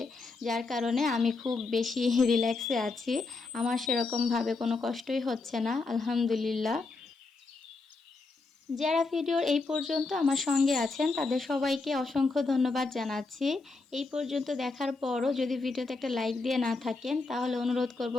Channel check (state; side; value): quieter; right; 3.8 dB